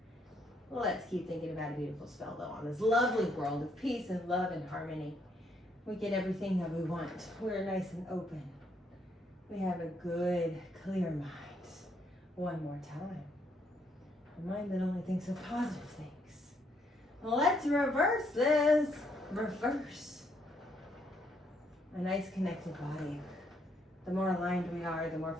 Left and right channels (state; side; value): normal; both; correlation 0.72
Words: Let's keep thinking about a beautiful spell though on this lovely world of peace and love and harmony. We get everything that we want. We're nice and open. We have a good, clear mind. One more time. A mind that only thinks of positive things. Let's reverse this. Reverse. A nice connected body. The more aligned we are, the more